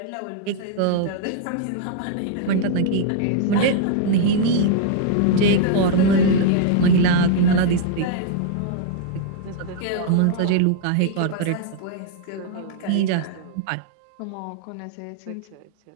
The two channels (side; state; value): both; different; correlation -0.01